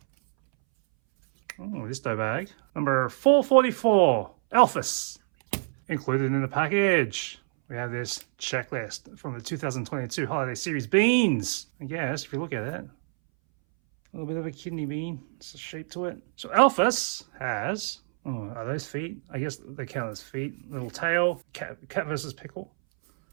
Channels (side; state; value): left; silent; 60 dB below the other